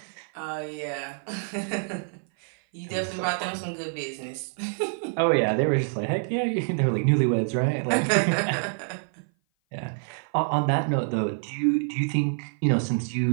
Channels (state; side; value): silent; left; 56 dB below the other